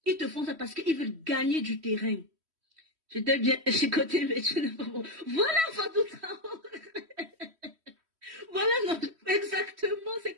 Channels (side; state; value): left; late; 3.1 ms